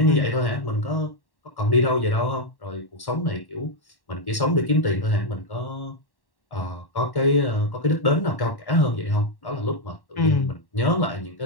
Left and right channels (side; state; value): right; late; 1.1 ms